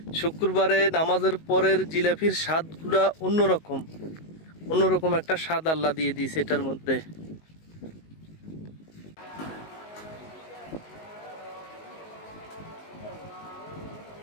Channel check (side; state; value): right; late; 19 ms